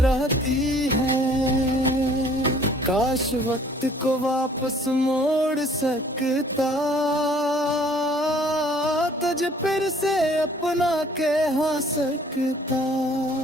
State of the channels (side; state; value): both; normal; correlation 0.57